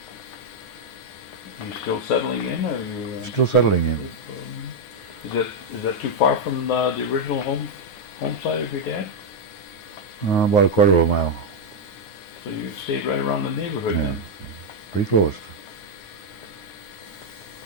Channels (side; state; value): right; late; 9.6 ms